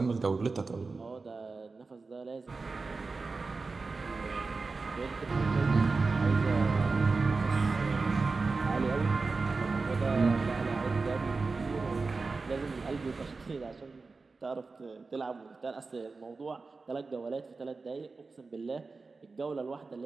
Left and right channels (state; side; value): quieter; left; 4.1 dB